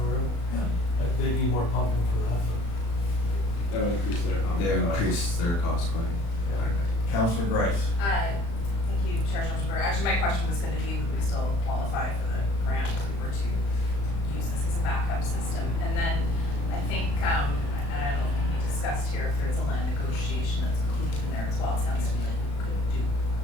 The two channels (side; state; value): right; late; 35 ms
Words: river? Yeah. They need more pumping for that, but. That would increase their pumping They costs. increase their cost quite a bit. Councilor Grice? Thank you, Chair Schulzenberger. Actually, my question was gonna be, would we still qualify for the grant if we were to use this as a backup system? And then I think, and I don't know if we discussed here, if there's a land negotiation that's included in there as well. It sounds to me like we could do